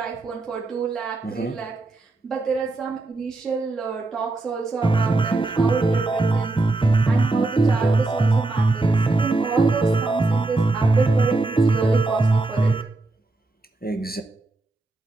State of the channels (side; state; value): left; quieter; 3.1 dB